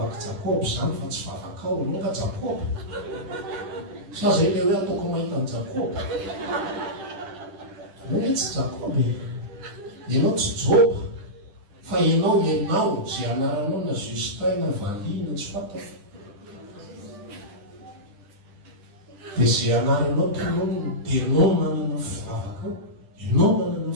jakoby zany fa tsy vavaka ao anao ka jakoby sa zay le hoe ataoko mahita ny jakoby anao hoe tsy jakoby ianao tsy joba fa ianao zay anaranao na Justin na Vali na tsy fatako dia zay anaranao tonono dia ianao manana fivavaka ao ianao manana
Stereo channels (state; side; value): late; left; 10 ms